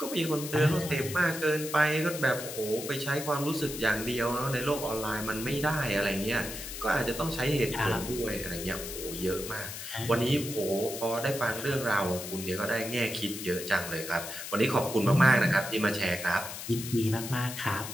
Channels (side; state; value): left; noise; hiss, 8 dB below the sound